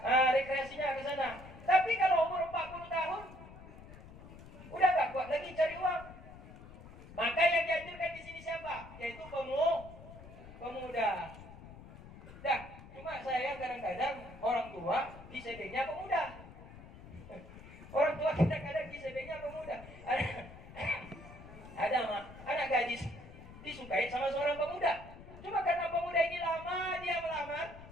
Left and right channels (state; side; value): noise; left; rumble, 16 dB below the sound